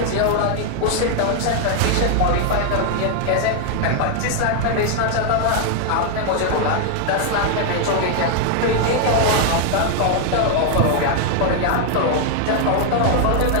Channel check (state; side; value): different; both; correlation 0.00